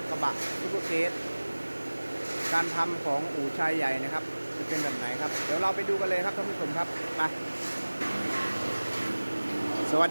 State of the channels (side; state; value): both; inverted; correlation -1.00